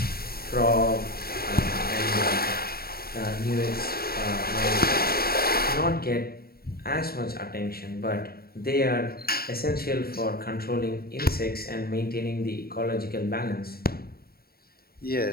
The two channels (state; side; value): late; right; 0.44 ms